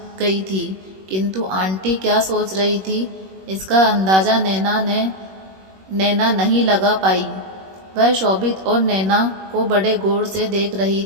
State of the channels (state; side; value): late; left; 21 ms